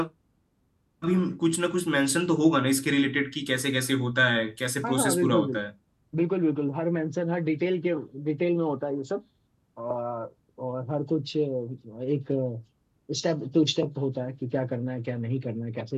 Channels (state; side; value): identical; both; correlation 1.00